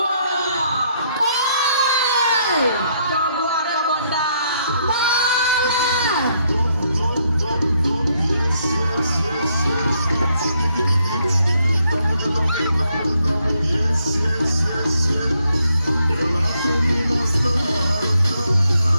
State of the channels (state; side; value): inverted; both; correlation -0.74